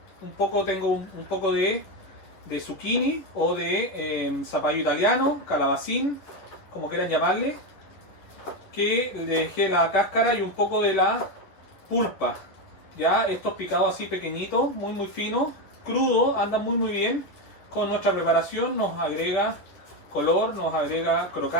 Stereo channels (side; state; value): right; late; 10 ms